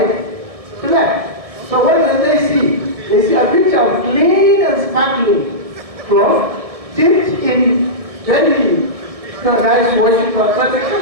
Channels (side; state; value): left; late; 1.6 ms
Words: to left. So what did they see? They see a picture of clean and sparkling cloth dipped in very nice washing powder. But they